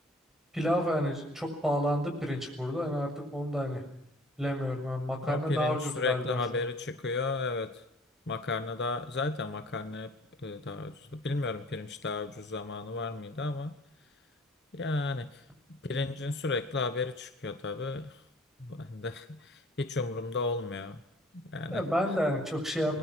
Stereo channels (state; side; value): normal; both; correlation 0.52